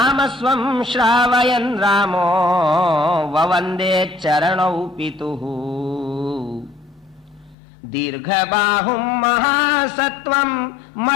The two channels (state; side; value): drops out; right; at 7.6 s